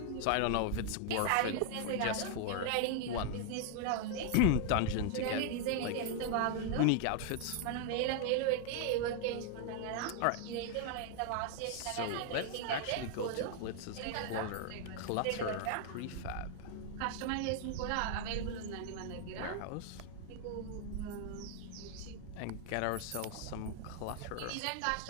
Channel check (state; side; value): different; both; correlation 0.00